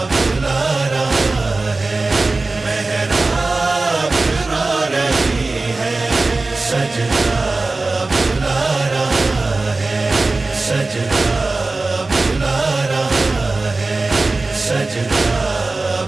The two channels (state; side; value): quieter; left; 3.4 dB